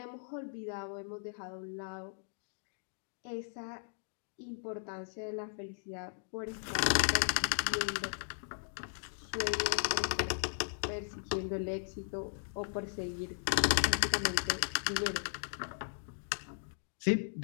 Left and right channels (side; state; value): right; silent; digital silence